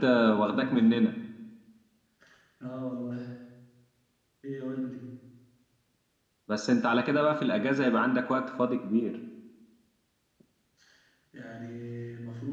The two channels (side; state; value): both; identical; correlation 1.00